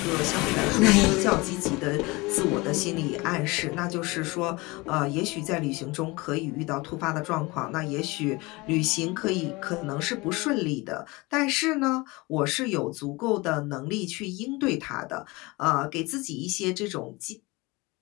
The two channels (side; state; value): right; quieter; 23.8 dB